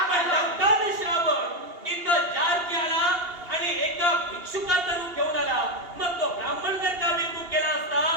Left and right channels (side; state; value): left; late; 2.8 ms